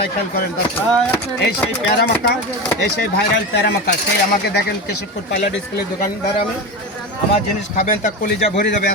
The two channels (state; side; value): normal; both; correlation 0.22